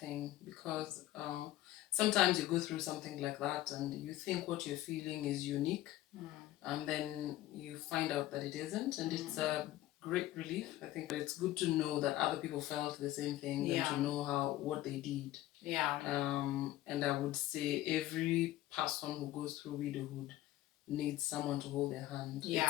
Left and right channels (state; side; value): quieter; right; 15.1 dB